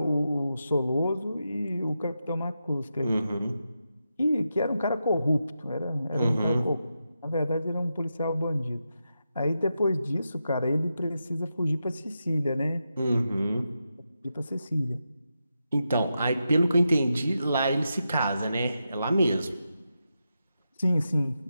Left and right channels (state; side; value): inverted; both; correlation -0.87